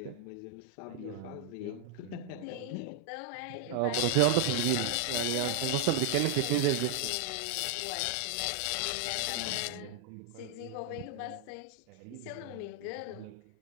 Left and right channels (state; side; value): different; both; correlation 0.00